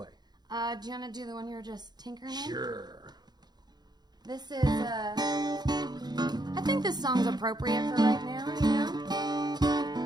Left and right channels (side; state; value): left; late; 0.20 ms